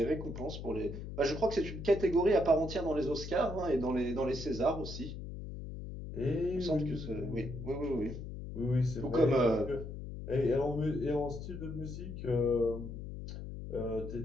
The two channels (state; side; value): noise; left; hum, 8 dB below the sound